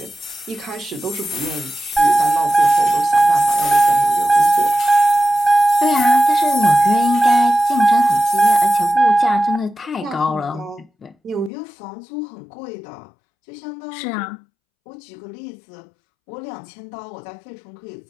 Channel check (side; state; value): right; drops out; at 11.5 s